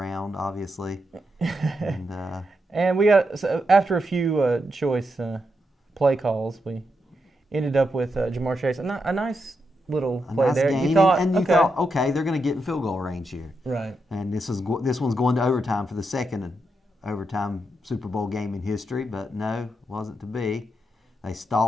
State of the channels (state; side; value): normal; both; correlation 0.84